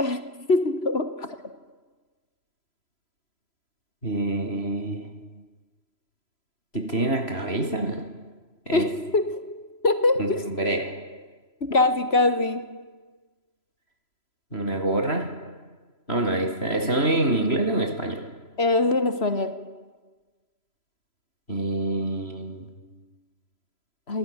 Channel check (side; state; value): right; late; 3.0 ms